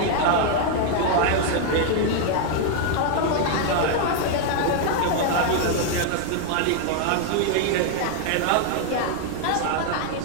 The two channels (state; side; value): different; both; correlation 0.00